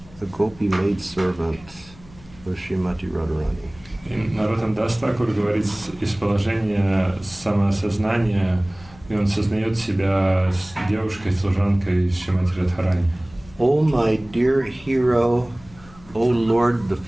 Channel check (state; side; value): noise; left; hum, 23 dB below the sound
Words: a gopi maidservant of Srimati Radharani. И Нароттам Дас Такур говорит из положения самоосознания, и он сознает себя девушкой-служанкой Шримати Радхарани. Oh, my dear hero, O Lord, the